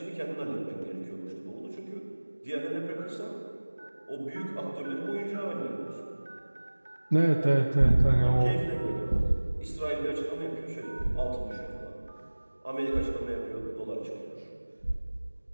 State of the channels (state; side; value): inverted; both; correlation -1.00